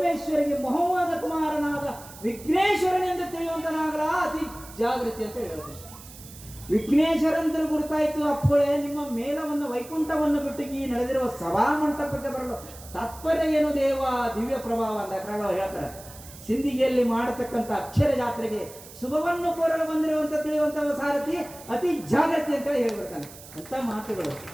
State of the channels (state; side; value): noise; right; hiss, 18 dB below the sound